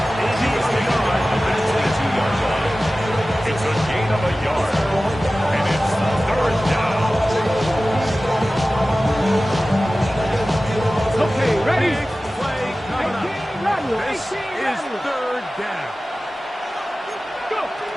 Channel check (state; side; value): normal; both; correlation 0.96